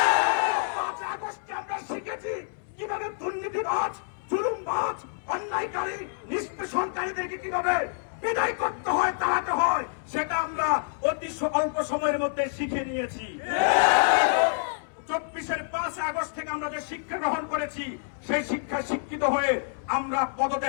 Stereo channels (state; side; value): silent; right; 60 dB below the other